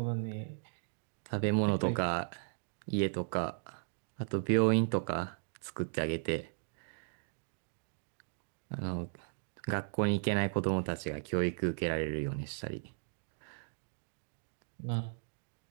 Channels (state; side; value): silent; left; digital silence